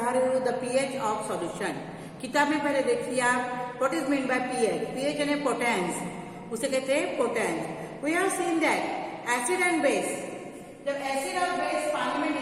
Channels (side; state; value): both; identical; correlation 1.00